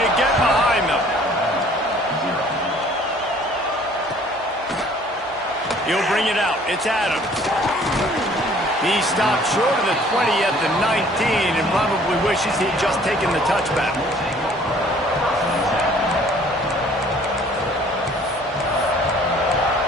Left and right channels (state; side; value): normal; both; correlation 0.55